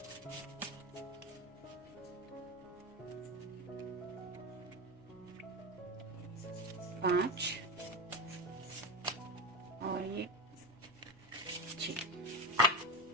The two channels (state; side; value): noise; left; hum, 26 dB below the sound